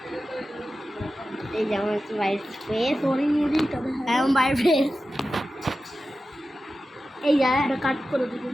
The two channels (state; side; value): normal; both; correlation 0.93